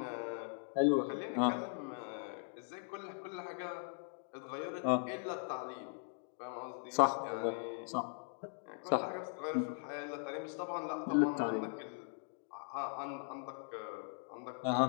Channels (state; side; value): silent; right; 51 dB below the other